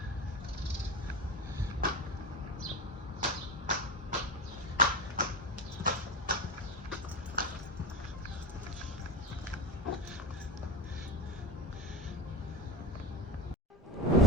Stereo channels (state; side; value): normal; both; correlation 0.26